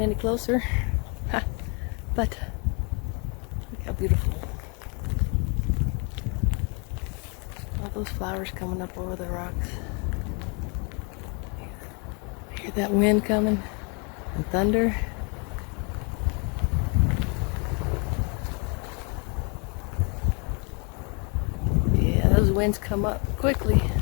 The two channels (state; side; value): quieter; right; 34.1 dB